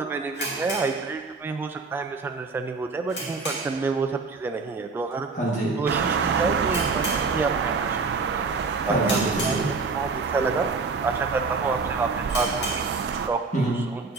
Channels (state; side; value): quieter; left; 4.2 dB